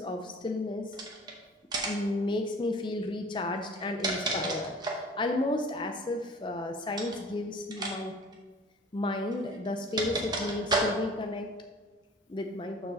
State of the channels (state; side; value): normal; both; correlation 0.46